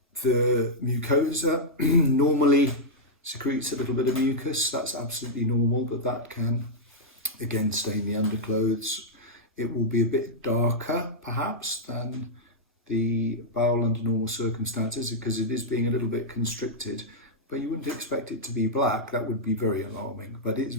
The mucosa normally secretes a little bit of mucus. That's absolutely normal, but that can again stain the underclothes. It will be a bit darker perhaps than the bowel under normal circumstances because it is being a little bit constricted, but you wouldn't expect it to be black. That would be very alarming, but it's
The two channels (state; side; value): normal; both; correlation -0.07